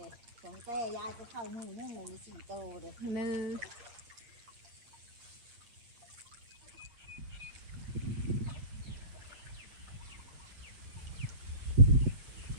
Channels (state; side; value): late; left; 8.6 ms